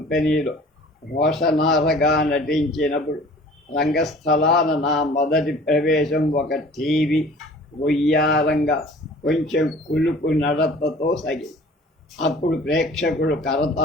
రోషనారగా నటించినప్పుడు రంగస్థలాన నా మొదటి ప్రవేశం ఒక టీవీ వయ్యారంగా కొంచెం కులుపు నడతతో సాగింది. అప్పుడు ప్రేక్షకులు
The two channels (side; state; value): both; normal; correlation 0.47